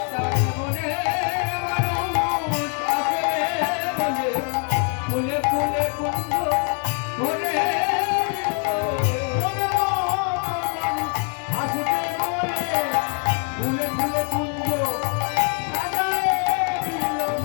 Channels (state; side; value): quieter; right; 37.6 dB